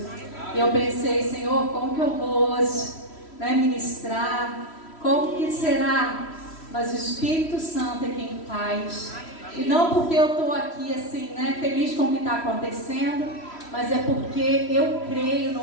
Eu pensei, Senhor, como que eu vou hoje ministrar? Como que será? Mas o Espírito Santo é quem faz. E não porque eu estou aqui assim, feliz com o que está acontecendo, mas é porque eu creio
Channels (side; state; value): right; late; 3.1 ms